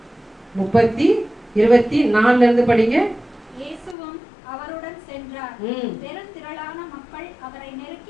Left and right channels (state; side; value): drops out; right; at 4.0 s